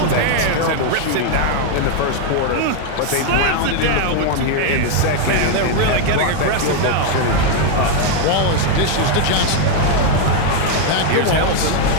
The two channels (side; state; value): both; different; correlation 0.01